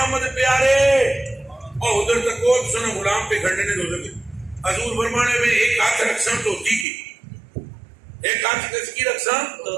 پیارے اور ادھر تک کو سنا غلام پہ کھڑنے نے دوزر کے حضور فرمانے میں ایک ہاتھ رکھسن تو کی ایک ہاتھ کس کی رکھسن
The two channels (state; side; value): drops out; left; at 6.9 s